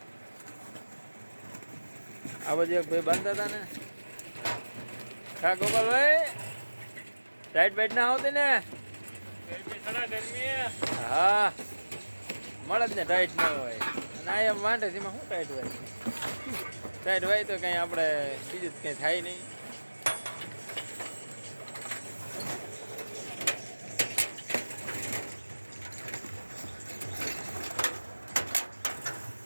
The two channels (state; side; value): inverted; both; correlation -1.00